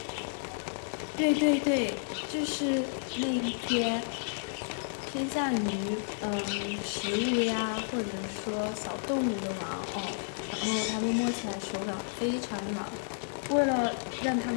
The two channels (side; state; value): right; silent; 57 dB below the other